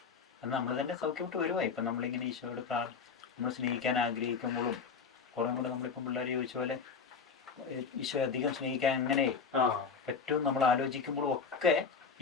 അത് നമ്മൾ തന്നെ സൗഖ്യമായിട്ട് വരുവാ. ഇപ്പം നമ്മളിങ്ങനെ ഈശോയോട് നമ്മൾ സ്നേഹിക്കാൻ ആഗ്രഹിക്കുമ്പോഴും കുറേ കൂടെ നമ്മളിപ്പം പിള്ളേർ ചോദിച്ച പോലെ ഈശോ അധികം സ്നേഹിക്കാൻ എങ്ങനെ പറ്റും നമ്മൾ ആലോചിക്കുമ്പോഴും ഒക്കെ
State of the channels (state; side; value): quieter; right; 5.6 dB